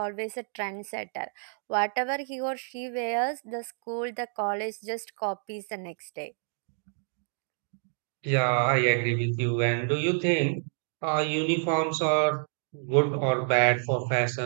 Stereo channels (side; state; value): left; silent; digital silence